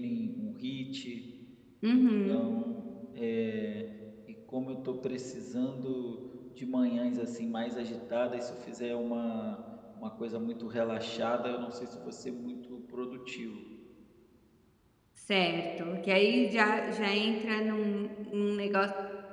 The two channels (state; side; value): identical; both; correlation 1.00